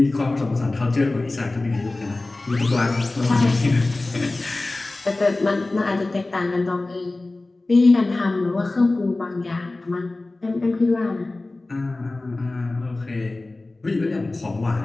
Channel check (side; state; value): right; quieter; 3.0 dB